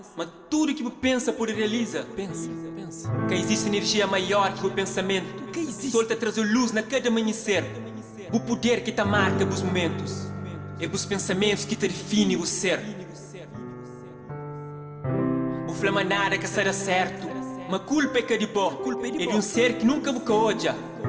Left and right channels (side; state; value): both; identical; correlation 1.00